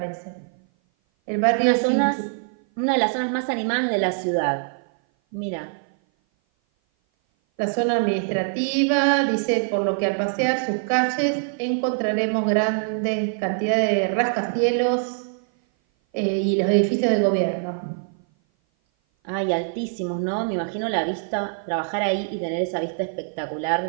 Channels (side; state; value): left; silent; 57 dB below the other